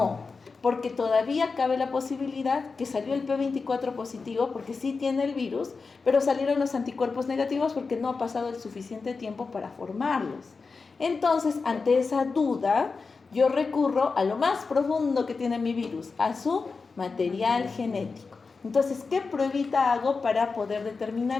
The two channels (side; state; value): right; quieter; 4.5 dB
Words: porque todavía cabe la posibilidad que salió el P24 positivo porque sí tiene el virus, pero salieron los anticuerpos negativos porque no ha pasado el suficiente tiempo para formarlos. Entonces, ante esa duda, yo recurro a lo más profundo que tiene mi virus, a su material genético. Entonces, ¿qué pruebita hago para poder